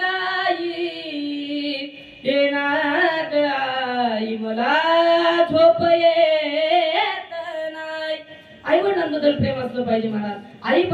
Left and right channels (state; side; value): identical; both; correlation 1.00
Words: हे नाग आई मला झोप येत नाही. आई वडिलांबद्दल प्रेम असलं पाहिजे महाराज. आई